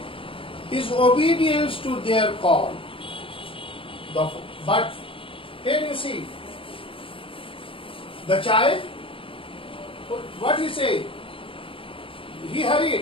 his obedience to their call. But here you see, the child, what he said? He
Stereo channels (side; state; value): right; late; 0.26 ms